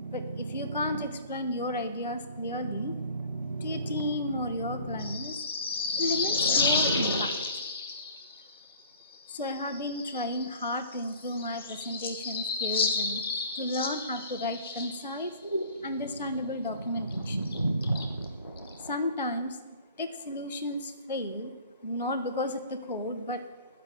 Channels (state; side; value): inverted; both; correlation -0.46